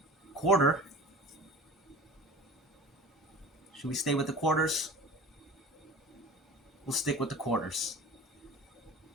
Quarter. Should we stay with the quarters? We'll stick with the quarters.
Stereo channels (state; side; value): normal; both; correlation 0.38